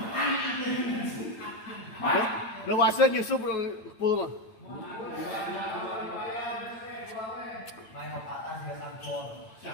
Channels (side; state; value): right; late; 8.9 ms